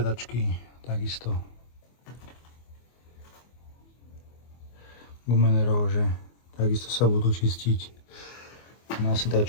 takisto. Gumenerov, že takisto sa budú čistiť. Na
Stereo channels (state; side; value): late; right; 24 ms